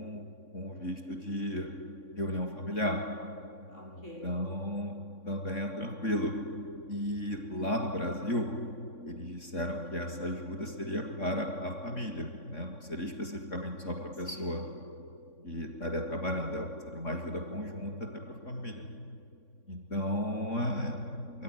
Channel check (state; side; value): late; right; 3.6 ms